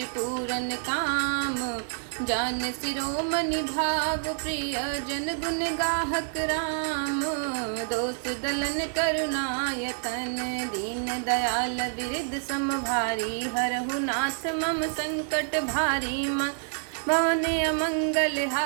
काम जान शिरोमणि भाव, प्रिय जन गुण गाहक राम। दोष दलन करुणायतन, दीन दयाल विरद सम भारी। हरहु नाथ मम संकट भारी। भवन अमंगल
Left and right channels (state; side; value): silent; left; 59 dB below the other